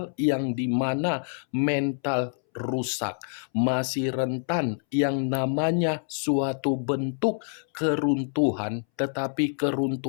yang dimana mental rusak, masih rentan yang namanya suatu bentuk keruntuhan, tetapi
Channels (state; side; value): silent; right; 60 dB below the other